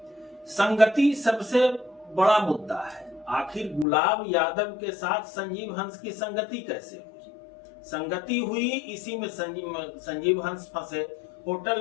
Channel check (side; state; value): right; drops out; at 3.9 s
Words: संगति सबसे बड़ा मुद्दा है। आखिर गुलाब यादव के साथ संजीव हंस की संगति कैसे हुई? संगति हुई इसी में संजीव हंस फंसे।